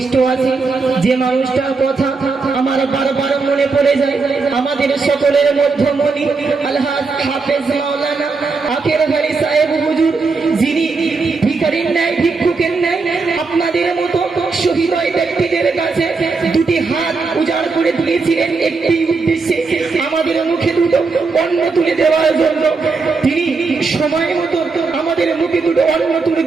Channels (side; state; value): left; quieter; 4.4 dB